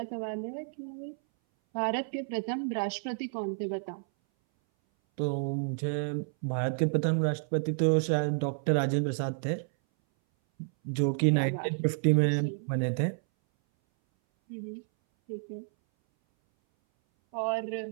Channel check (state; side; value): silent; left; 58 dB below the other